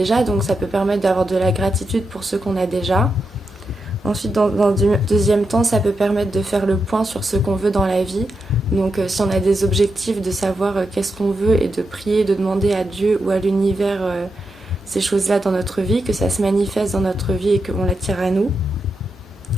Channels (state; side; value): normal; both; correlation 0.86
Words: Donc ça peut permettre d'avoir de la gratitude pour ce qu'on a déjà. Ensuite, dans le deuxième temps, ça peut permettre de faire le point sur ce qu'on veut dans la vie. Donc si on a des objectifs, de savoir qu'est-ce qu'on veut et de prier, de demander à Dieu ou à l'univers ces choses-là dans notre vie, que ça se manifeste dans notre vie et qu'on l'attire à nous.